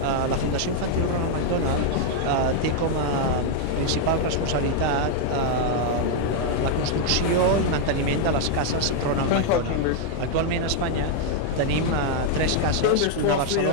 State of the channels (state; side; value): different; both; correlation 0.00